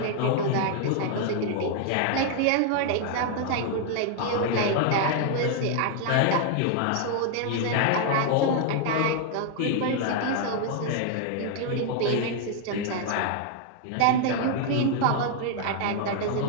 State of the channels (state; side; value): different; both; correlation 0.00